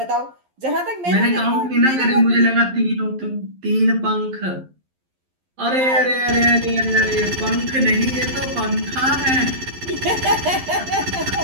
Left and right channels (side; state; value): left; late; 11 ms